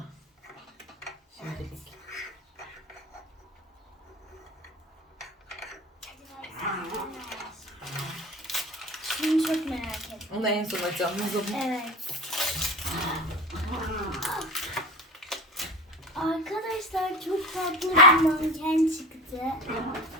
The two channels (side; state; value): both; normal; correlation 0.32